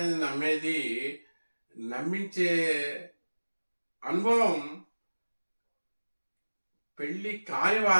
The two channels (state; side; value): inverted; both; correlation -1.00